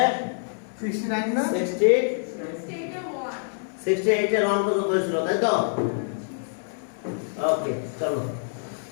69 না 68 এর 1 পর্যন্ত হয়েছিল তাই তো ওকে চলো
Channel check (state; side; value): silent; right; digital silence